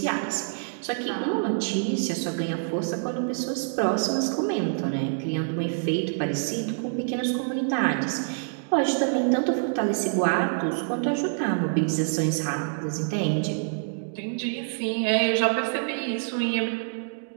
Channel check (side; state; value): left; silent; digital silence